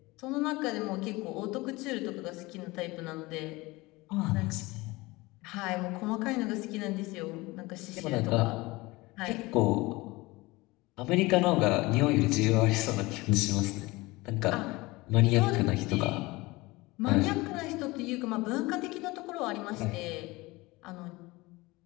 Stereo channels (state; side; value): quieter; right; 21.9 dB